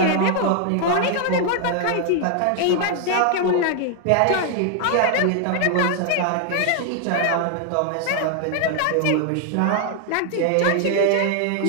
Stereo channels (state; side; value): different; both; correlation 0.00